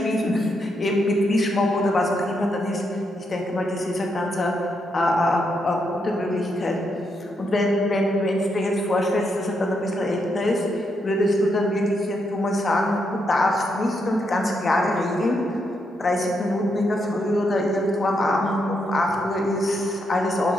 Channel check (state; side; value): normal; both; correlation 0.80